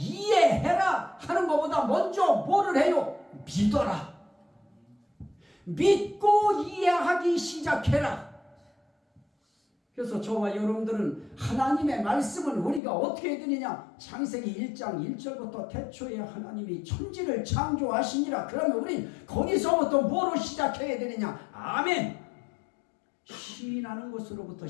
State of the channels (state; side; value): drops out; right; at 12.8 s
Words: 하는 것보다 먼저 뭐를 해요? 믿어라. 믿고 이해하기 시작해라. 그래서 저와 여러분들은 하나님의 말씀을 우리가 어떻게 해야 되느냐? 창세기 1장 1절부터 태초에 하나님이 천지를 창조하시니라. 그러면 우린 거기서부터 뭐로 시작해야 되느냐? 아멘. 시인하는 것으로부터